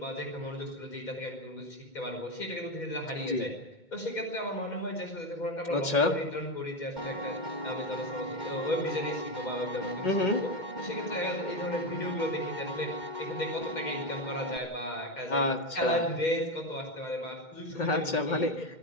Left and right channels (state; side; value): late; right; 2.2 ms